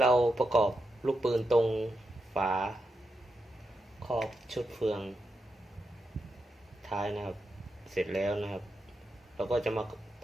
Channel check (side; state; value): both; normal; correlation 0.86